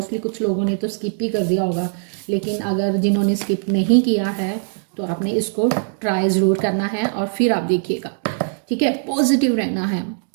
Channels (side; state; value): left; silent; digital silence